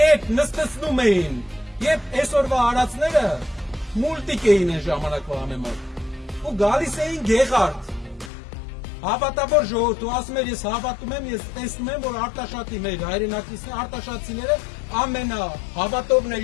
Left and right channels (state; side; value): drops out; right; at 8.3 s